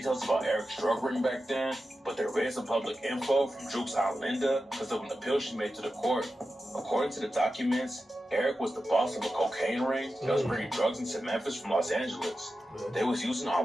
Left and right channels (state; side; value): normal; both; correlation 0.92